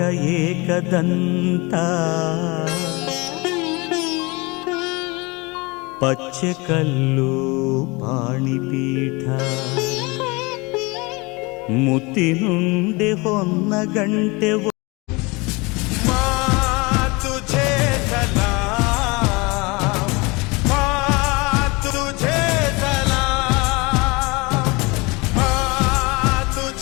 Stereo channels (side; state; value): right; quieter; 26.0 dB